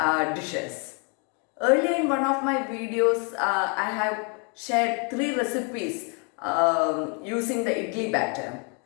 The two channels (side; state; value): right; quieter; 36.0 dB